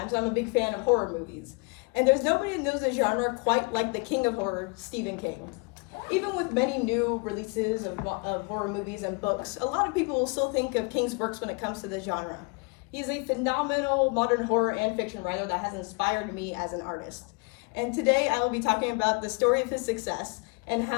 I'm a big fan of horror movies. And there's nobody who knows the genre quite like the king of horror, Stephen King. Even with many new releases of horror movies and books, a lot of people will still think of King's works when it comes to the genre. He's a phenomenal modern horror and fiction writer that has inspired me as an artist. And today I will be talking about the story of his success and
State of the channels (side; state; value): right; quieter; 31.3 dB